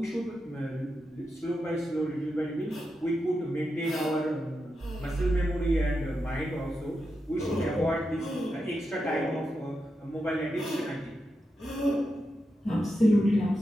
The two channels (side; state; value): both; normal; correlation 0.87